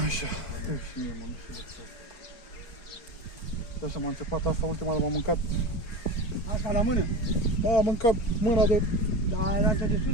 Așa. Și mie, mă, nu știu de ce. Așa m-a înțepat asta, ultima dată m-am mâncat. Asta la mână? Da, am mâncat mâna de... Da, altă de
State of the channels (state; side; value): late; right; 4.9 ms